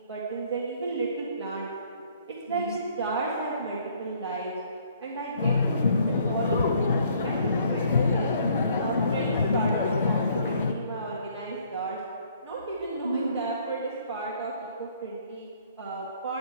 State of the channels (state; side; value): inverted; both; correlation -0.61